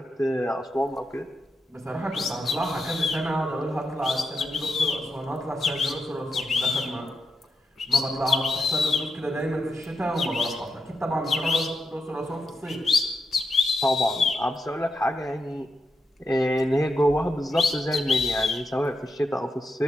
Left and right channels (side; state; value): both; normal; correlation 0.85